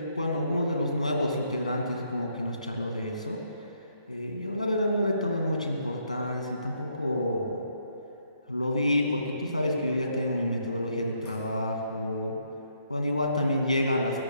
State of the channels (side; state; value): both; inverted; correlation -0.73